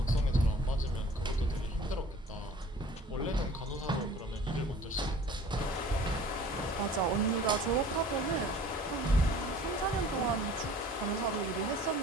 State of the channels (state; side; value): normal; both; correlation 0.48